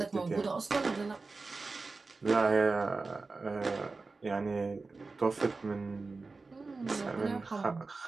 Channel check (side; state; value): left; quieter; 3.9 dB